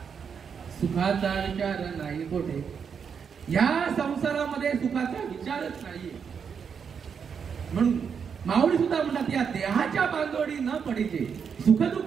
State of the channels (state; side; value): quieter; left; 6.7 dB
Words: सुखाचा विचार नाही कोठे. या संसारामध्ये सुखाचा विचारच नाहीये. म्हणून माऊली सुद्धा म्हणतात, या देहाच्या बांधवडी न पडीचे,